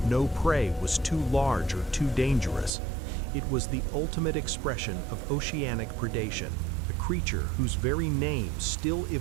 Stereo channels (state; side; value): drops out; left; at 2.7 s